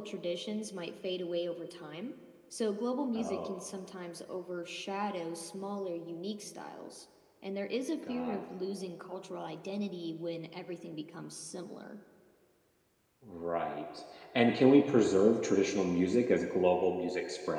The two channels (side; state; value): both; identical; correlation 1.00